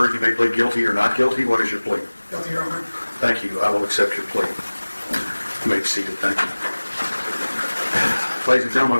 you may plead guilty or not guilty. What is your plea? Guilty, Your Honor. Thank you. I will accept your plea. You may be seated. Thank you. Ladies and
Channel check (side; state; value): both; inverted; correlation -1.00